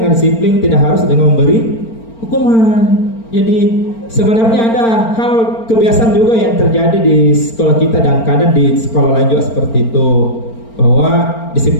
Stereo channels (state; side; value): late; right; 4.4 ms